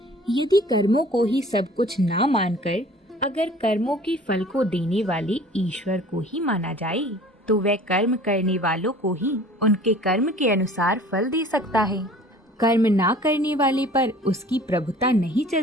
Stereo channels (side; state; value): both; normal; correlation 0.48